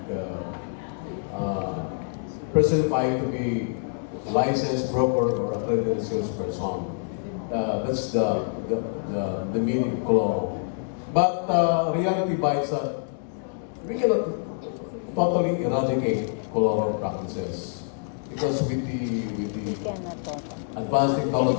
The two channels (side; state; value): right; silent; digital silence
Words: personifying to be licensed broker or accredited salesperson. That's the meaning of color. But reality bites that we cannot totally eradicate color practices because with the advanced